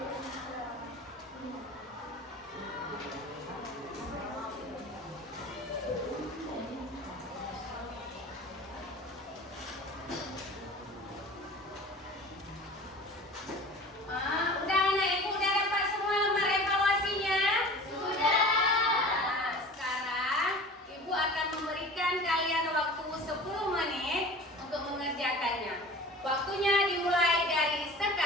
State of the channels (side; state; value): both; normal; correlation 0.40